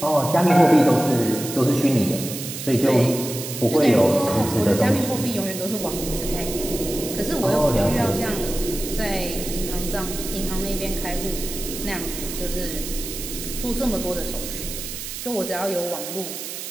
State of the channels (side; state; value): right; noise; hiss, 8 dB below the sound